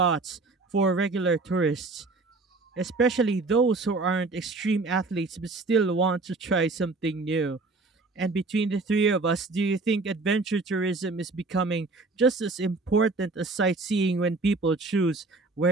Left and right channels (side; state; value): left; quieter; 3.5 dB